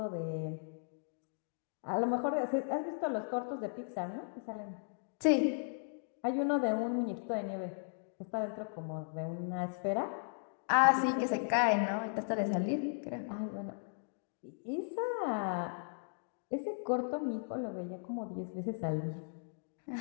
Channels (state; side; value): silent; right; digital silence